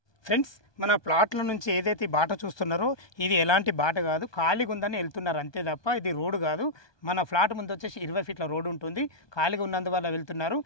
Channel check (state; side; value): late; right; 1.2 ms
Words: Friends మన ప్లాట్ల నుంచి ఏదైతే బాట చూస్తున్నారో ఇది ఎలాంటి బాట కాదు, ఖాళీగా ఉందని వెళ్తున్నారు అంతే తప్ప ఇది రోడ్డు కాదు. మన ఫ్లాట్ ముందు వచ్చేసి 20 ఫీట్ల రోడ్డు ఉంటుంది, ఖాళీగా ఉన్నందువల్ల వెళ్తున్నారు.